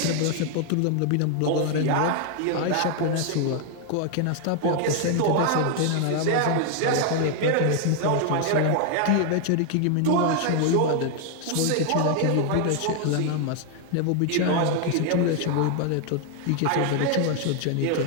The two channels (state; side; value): different; both; correlation 0.00